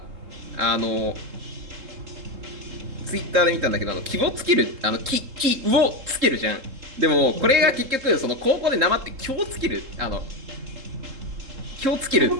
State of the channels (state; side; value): late; left; 3.7 ms